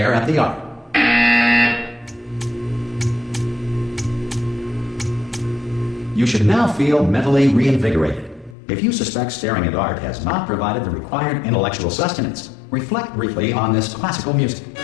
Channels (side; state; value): right; drops out; at 8.6 s